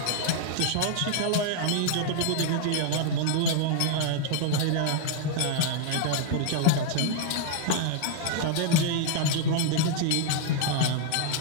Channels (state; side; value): different; both; correlation 0.00